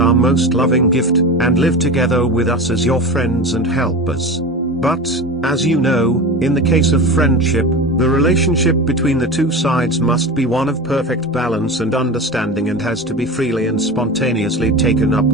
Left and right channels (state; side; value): normal; both; correlation 0.28